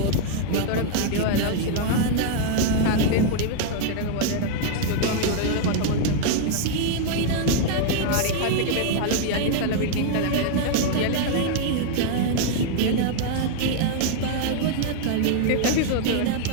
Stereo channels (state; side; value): different; both; correlation 0.00